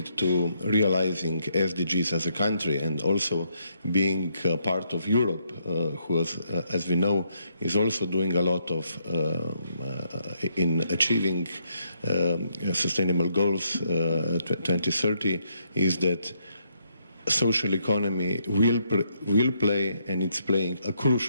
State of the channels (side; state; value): both; inverted; correlation -0.75